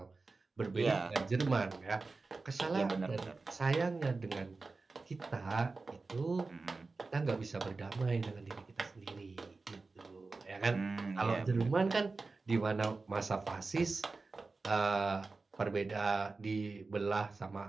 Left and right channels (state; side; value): quieter; left; 3.8 dB